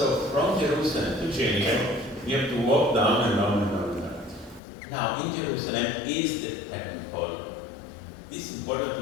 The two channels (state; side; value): drops out; right; at 4.6 s